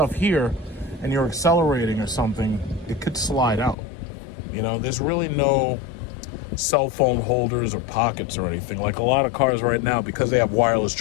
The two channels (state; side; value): drops out; right; at 3.8 s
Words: here and you're accelerating or something, it could slide out. You know, there's really no cell phone holders or pockets or anything. Like a lot of cars right now, because they have wireless